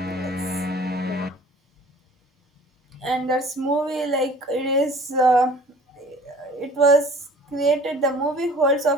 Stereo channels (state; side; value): normal; both; correlation 0.49